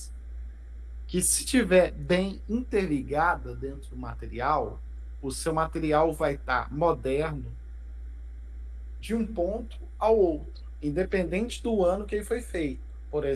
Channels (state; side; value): identical; both; correlation 1.00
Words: que se tiver bem interligada dentro do material, o seu material vai estar moderno de um ponto ao outro, independente do ano que ele foi feito. Por